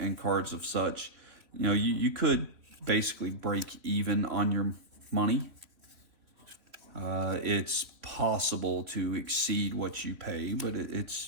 cards of such, you know, you could basically break even on your money. It's possible to exceed what you pay, but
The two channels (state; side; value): late; left; 3.0 ms